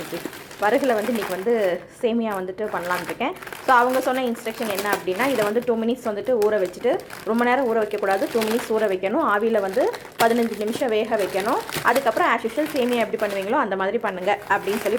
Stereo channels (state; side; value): identical; both; correlation 1.00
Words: வரகில் வந்து இன்றைக்கி வந்து சேமியா வந்துட்டு பண்ணலான்னு இருக்கேன். ஸோ அவங்க சொன்ன இன்ஸ்ட்ரக்ஷன் என்ன அப்படின்னா, இதை வந்து 2 மினிட்ஸ் வந்துட்டு ஊற வச்சுட்டு, ரொம்ப நேரம் ஊற வைக்கக்கூடாது, 2 மினிட்ஸ் ஊற வைக்கணும். ஆவியில் வந்து 15 நிமிஷம் வேக வைக்கணும். அதுக்கப்புறம் ஆஸ் யூஷுவல் சேமியா எப்படி பண்ணுவீங்களோ அந்த மாதிரி பண்ணுங்கள் அப்படின்னு